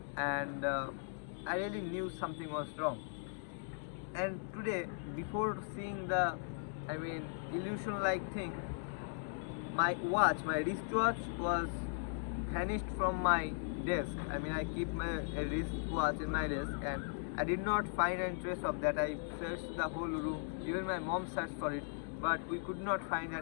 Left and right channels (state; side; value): silent; right; digital silence